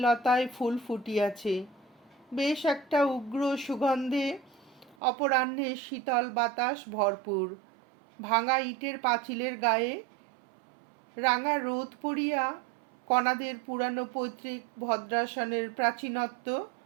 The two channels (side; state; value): left; drops out; at 5.0 s